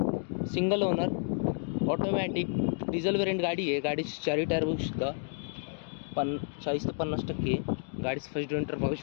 single owner automatic diesel variant गाडी आहे। गाडीची चारी टायर बघू शकता, 40 ते 50% गाडीचं फर्स्ट डिंटर बघू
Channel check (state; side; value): silent; right; 57 dB below the other